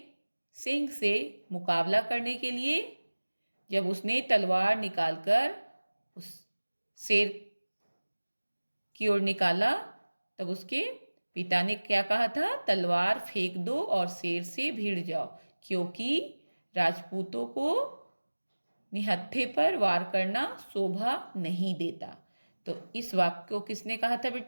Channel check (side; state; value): both; inverted; correlation -1.00